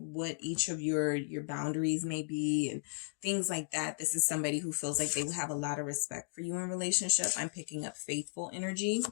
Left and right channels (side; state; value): right; silent; digital silence